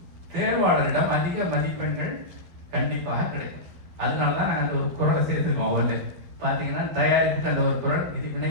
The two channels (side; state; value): left; late; 12 ms